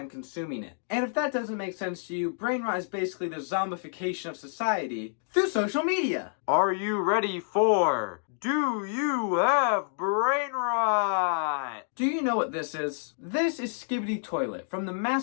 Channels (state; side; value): silent; right; digital silence